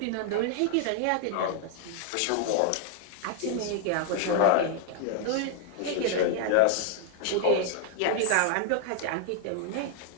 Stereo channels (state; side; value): different; both; correlation 0.00